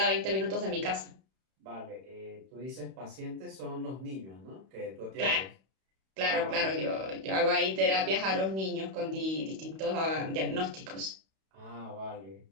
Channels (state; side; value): late; left; 31 ms